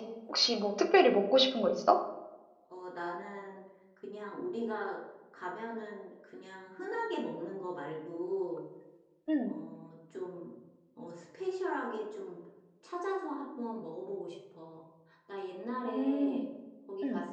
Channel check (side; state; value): both; identical; correlation 1.00